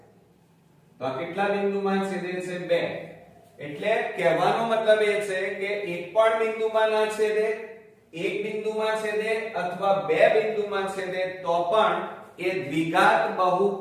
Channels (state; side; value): identical; both; correlation 1.00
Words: તો આ કેટલા બિંદુમાં છેદે છે, 2. એટલે કહેવાનો મતલબ એ છે કે એક પણ બિંદુમાં ના છેદે, એક બિંદુમાં છેદે અથવા બે બિંદુમાં છેદે તો પણ એ દ્વિઘાત